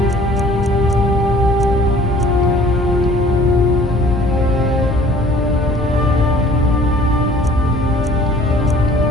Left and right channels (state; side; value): normal; both; correlation 0.52